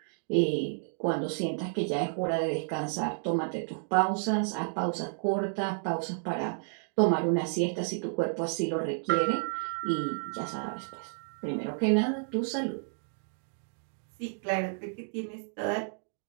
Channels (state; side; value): silent; left; digital silence